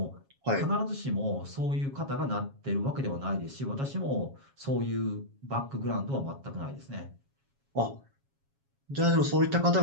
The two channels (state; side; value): late; left; 7.3 ms